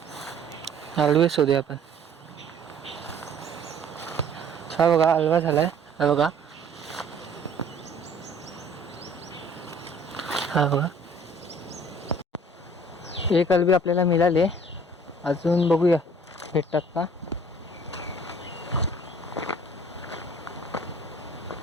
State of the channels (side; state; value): both; normal; correlation 0.53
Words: आल्बी शोधूया आपण. हा बघा आल्बा झालाय. हा बघा, हा बघा, एक आल्बी आपल्याला मिळाले. अजून बघूया भेटतात का.